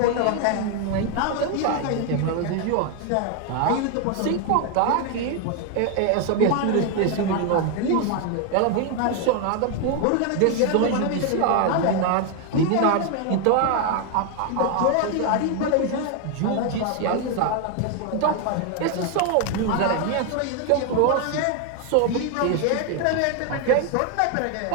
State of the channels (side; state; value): both; different; correlation 0.01